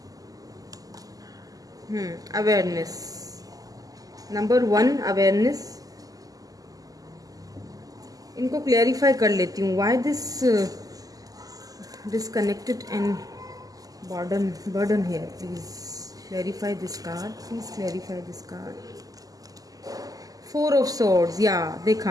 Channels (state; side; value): late; left; 0.17 ms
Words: Awareness, number 1 awareness. इनको क्लैरिफाई कर लेती हूँ। Why this disconnected and burden here, please clarify this card, please clarify this card. 4 of swords, या